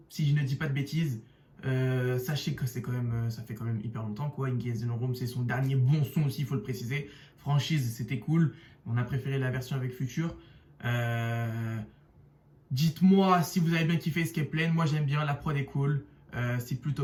si je ne dis pas de bêtises. Sachez que c'est quand même, ça fait quand même hyper longtemps quoi. Engage in the Room, c'est son dernier bon son aussi, il faut le préciser. Franchise, c'était cool. On a préféré la version avec Future. Dites-moi si vous avez bien kiffé Escape Plan. Moi j'aime bien, la prod est cool. C'est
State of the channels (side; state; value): both; identical; correlation 1.00